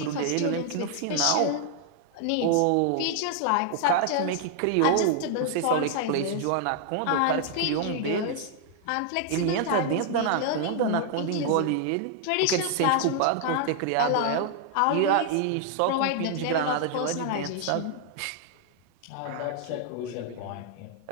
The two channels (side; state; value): both; different; correlation 0.00